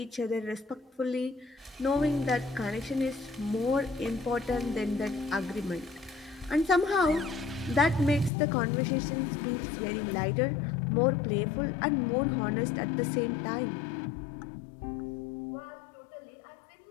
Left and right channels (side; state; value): right; drops out; at 8.3 s